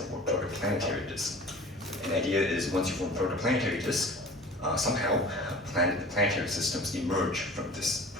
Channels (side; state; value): both; normal; correlation 0.41